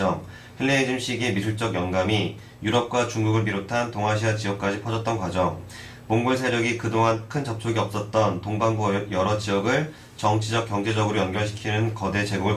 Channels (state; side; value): identical; both; correlation 1.00